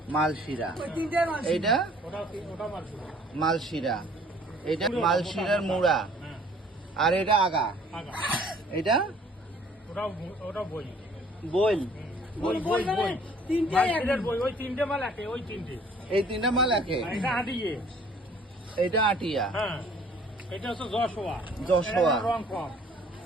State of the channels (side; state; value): both; normal; correlation 0.55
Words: মালশিরা। এইটা মালশিরা, এটা মালশিরার মুড়া। আর এটা আগা, এটা বইল। এই তিনটা মাল একে। এটা আটিয়া, যশোয়া। রং